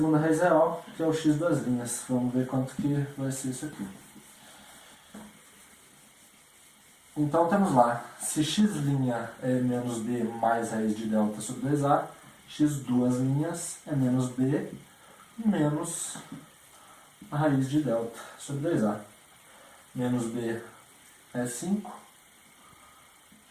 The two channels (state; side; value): identical; both; correlation 1.00